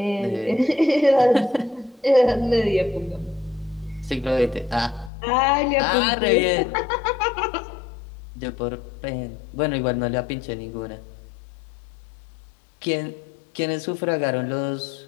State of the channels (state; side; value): drops out; right; at 5.1 s